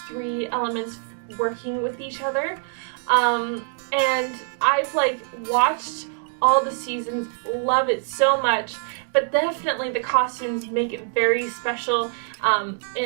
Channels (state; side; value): silent; left; digital silence